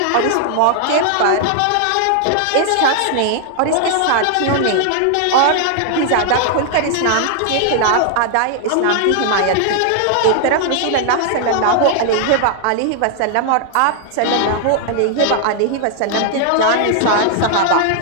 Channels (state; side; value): different; both; correlation 0.00